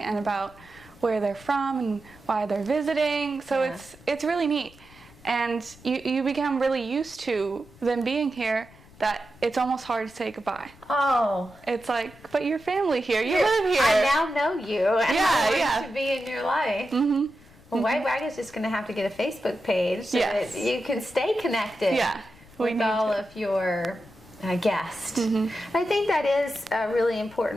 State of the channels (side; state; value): left; noise; rumble, 24 dB below the sound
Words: about where they're from and why they're visiting. So it's really neat. And you become really used to them being here that it's almost hard to say goodbye. Oh. It's like, but your family here, you live here. I now know you, and I want to be in your life. Mm-hmm. Well, Wagon's just going to have to get a Facebook page so that you can stay connected with all of your guests. Mm-hmm. I think that is a really